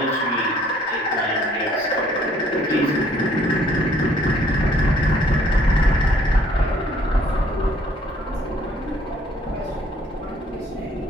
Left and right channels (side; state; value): both; normal; correlation 0.61